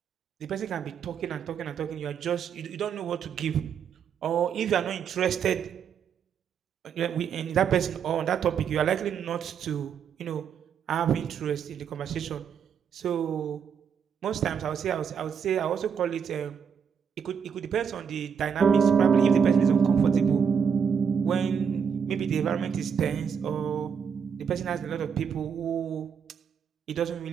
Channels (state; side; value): quieter; left; 7.1 dB